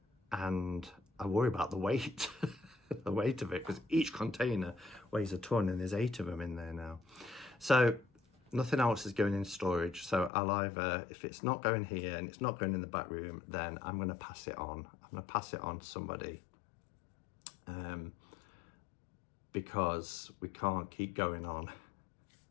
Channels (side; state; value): right; drops out; at 10.3 s